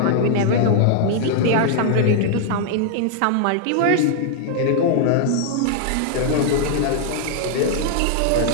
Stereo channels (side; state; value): both; different; correlation -0.01